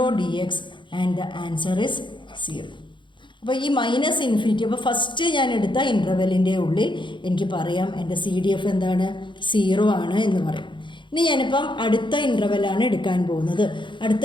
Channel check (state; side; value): late; right; 0.23 ms